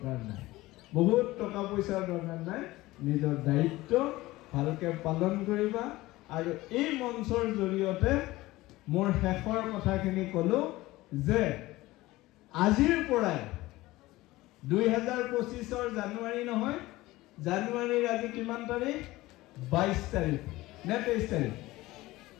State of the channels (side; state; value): right; quieter; 18.6 dB